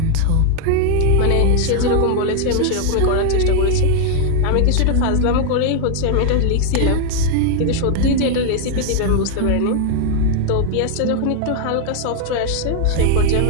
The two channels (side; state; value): both; different; correlation 0.00